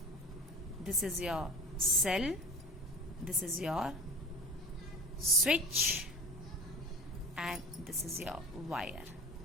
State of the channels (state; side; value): normal; both; correlation 0.37